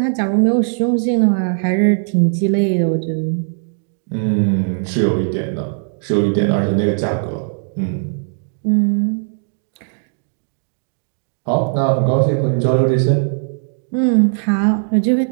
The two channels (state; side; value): silent; left; digital silence